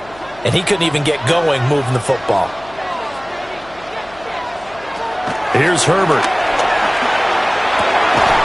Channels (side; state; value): left; noise; hum, 23 dB below the sound